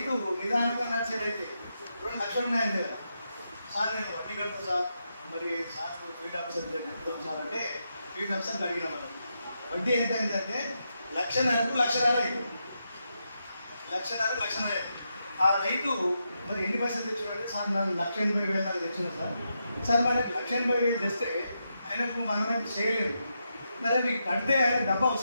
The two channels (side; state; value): both; inverted; correlation -0.84